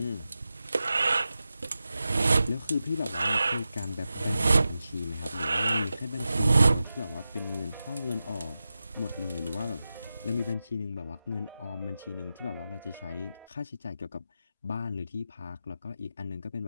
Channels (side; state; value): both; inverted; correlation -0.92